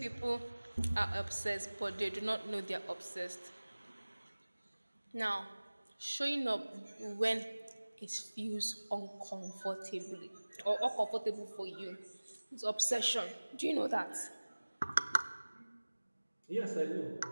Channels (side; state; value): both; inverted; correlation -1.00